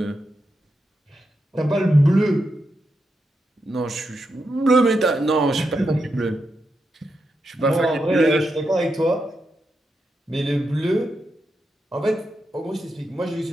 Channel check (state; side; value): normal; both; correlation 0.85